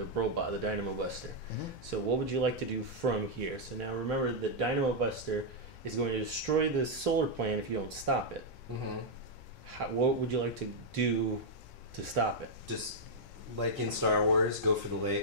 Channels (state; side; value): late; right; 1.4 ms